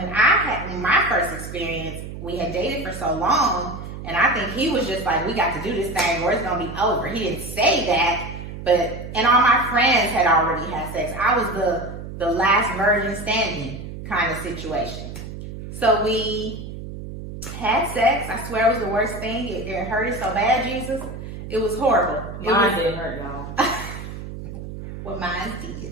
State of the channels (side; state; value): right; noise; hum, 10 dB below the sound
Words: I had my first experience, we had dated for so long, and I think he was just like, we got to do this thing or it's gonna be over. He didn't say that, and all my friends had already had sex. I was the last virgin standing kind of situation. So we had sex. I swear it was the worst thing. It hurted so bad, Jesus. It was horrible. Mine didn't hurt, y'all. Well, mine did.